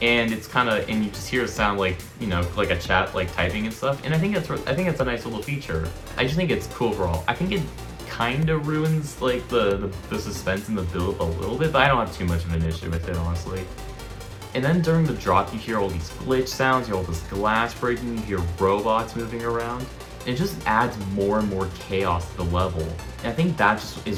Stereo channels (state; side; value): identical; both; correlation 1.00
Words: and it's kind of, and you just hear a sound like, you know, like a chat like typing and stuff. And I think it's a nice little feature. I just think it's cool overall. I think it kind of ruins like the suspense in the build a little bit, but I don't have too much of an issue with it, honestly. And then during the drop, you hear all these glitch sounds, you hear all this glass breaking, you hear robots moving around. It just adds more and more chaos to the level. And I think that just